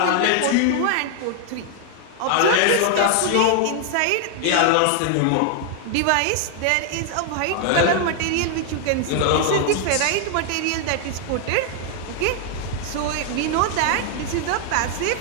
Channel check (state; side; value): different; both; correlation 0.00